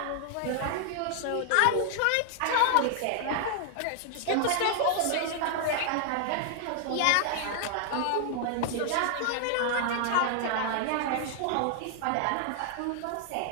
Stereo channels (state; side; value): different; both; correlation 0.00